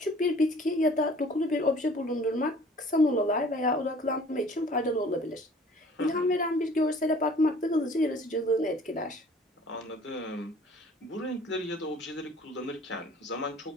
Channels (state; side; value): normal; both; correlation 0.51